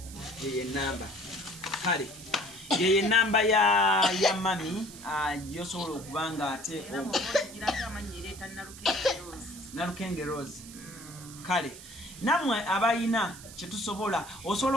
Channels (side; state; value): right; noise; hiss, 16 dB below the sound